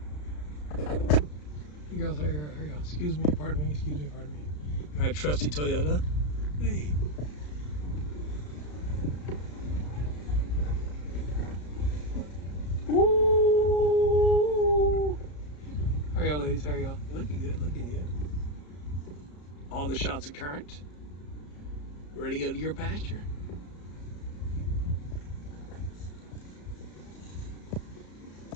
Here goes, here you go. Excuse me, pardon me. My trusty Toyota. Hey. Ooh. How are y'all, ladies? How are y'all? Looking good. All the shots are current. Ready to go to your pasture.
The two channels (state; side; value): late; right; 33 ms